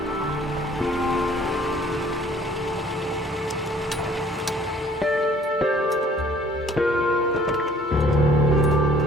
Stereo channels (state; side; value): normal; both; correlation 0.56